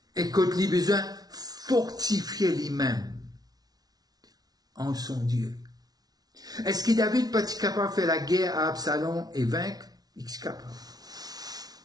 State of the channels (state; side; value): late; left; 0.19 ms